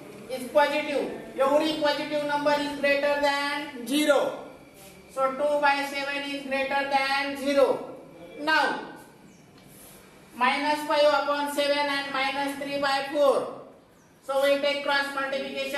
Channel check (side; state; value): both; identical; correlation 1.00